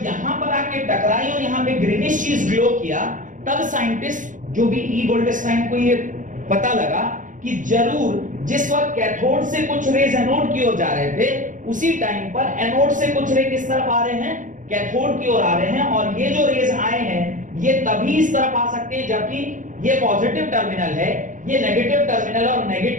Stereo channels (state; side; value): late; left; 0.37 ms